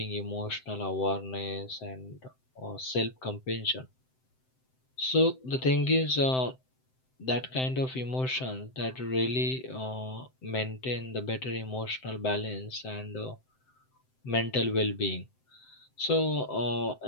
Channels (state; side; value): late; right; 7.8 ms